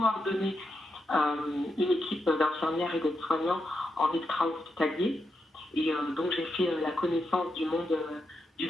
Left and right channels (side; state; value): both; normal; correlation 0.85